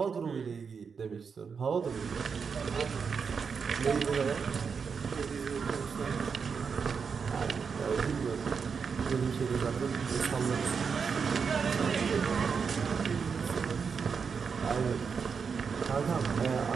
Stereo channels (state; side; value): quieter; left; 5.9 dB